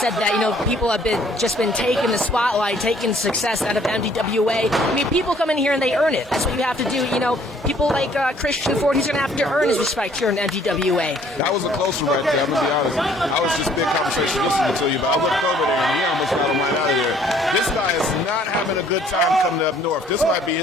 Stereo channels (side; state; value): both; normal; correlation 0.60